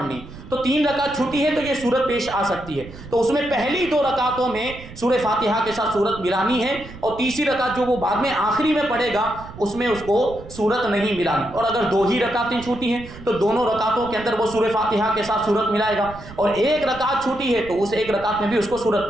تو 3 رکعت چھوٹی ہے تو یہ صورت پیش آ سکتی ہے، تو اس میں پہلی 2 رکعتوں میں سورہ فاتحہ کے ساتھ صورت ملانی ہے، اور تیسری رکعت جو وہ بعد میں آخری میں پڑھے گا اس میں اس کو صورت نہیں ملانی، اور اگر 2 ہی رکعتیں چھوٹی ہیں تو دونوں رکعتوں کے اندر وہ سورہ فاتحہ کے ساتھ صورت ملائے گا، اور 1 رکعت چھوٹی ہے تو اس 1 رکعت میں بھی اس کو صورت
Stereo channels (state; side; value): noise; right; rumble, 16 dB below the sound